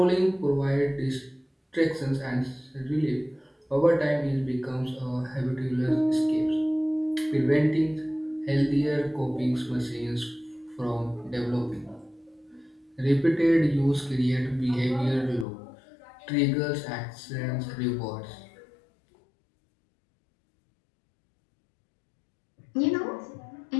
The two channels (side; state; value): right; drops out; at 15.5 s